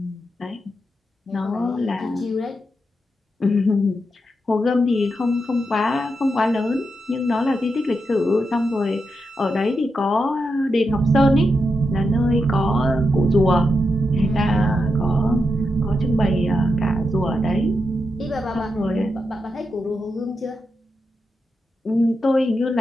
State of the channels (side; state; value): both; normal; correlation 0.86